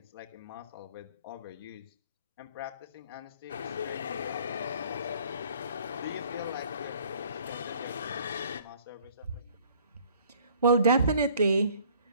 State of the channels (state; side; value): inverted; both; correlation -0.56